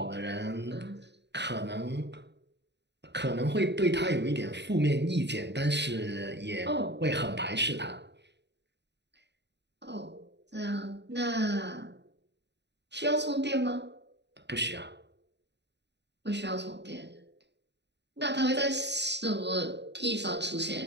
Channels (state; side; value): late; left; 0.50 ms